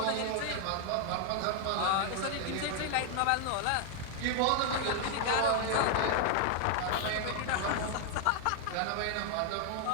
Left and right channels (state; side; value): different; both; correlation 0.00